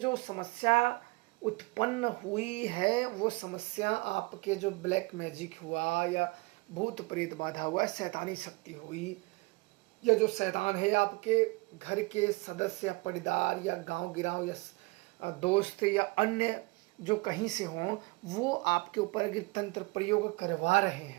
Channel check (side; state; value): left; quieter; 26.0 dB